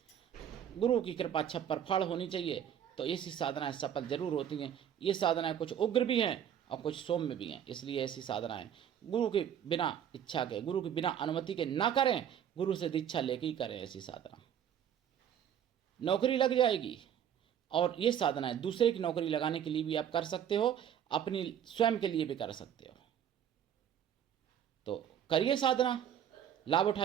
गुरु की कृपा छप्पर फाड़ होनी चाहिए। तो ऐसी साधनाएं सफल जरूर होती हैं। ये साधनाएं कुछ उग्र भी हैं और कुछ सौम्य भी हैं, इसलिए ऐसी साधनाएं गुरु के बिना इच्छा के, गुरु के बिना अनुमति के ना करें, गुरु से दीक्षा लेके ही करें। ऐसी साधना नौकरी लग जाएगी। और ये साधनाएं दूसरे की नौकरी लगाने के लिए भी आप कर सकते हो, अपनी स्वयं के लिए भी कर सकते हो। तो करिए साधना, लाभ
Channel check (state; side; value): quieter; left; 9.4 dB